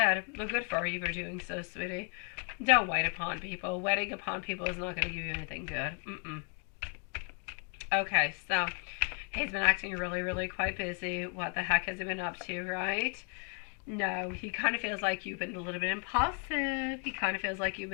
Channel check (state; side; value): quieter; right; 38.4 dB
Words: Well, good for you for doing so, sweetie. Don't wait upon people. Waiting upon people is not going to give you anything good. Okay, so he's been acting really, really quite busy. What the heck has he been up to, right? No, he kind of feels like you've been a little bit impulsive. He kind of feels like you've